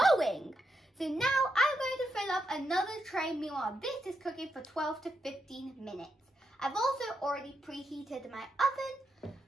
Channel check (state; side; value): normal; both; correlation 0.82